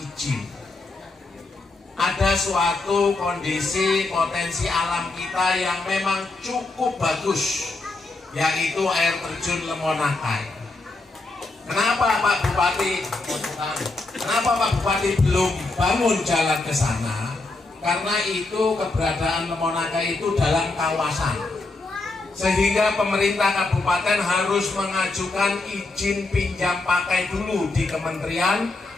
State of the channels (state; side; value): quieter; right; 3.3 dB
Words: Ada suatu kondisi potensi alam kita yang memang cukup bagus, yaitu air terjun Lemonakai. Kenapa Pak Bupati belum bangun jalan ke sana? Karena itu keberadaan Lemonakai itu dalam kawasan, sehingga pemerintah kabupaten harus mengajukan izin pinjam pakai dulu di Kementerian